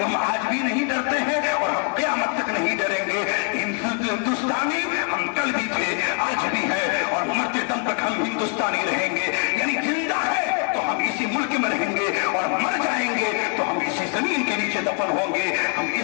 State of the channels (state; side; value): quieter; right; 36.2 dB